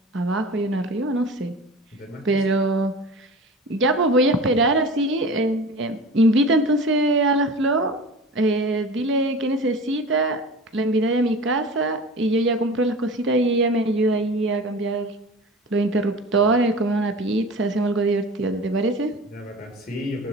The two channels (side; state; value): both; normal; correlation 0.36